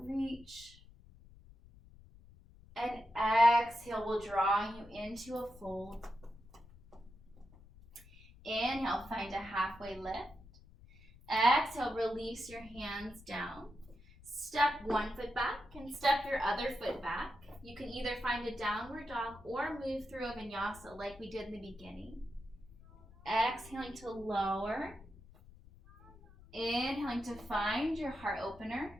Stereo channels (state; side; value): noise; left; rumble, 22 dB below the sound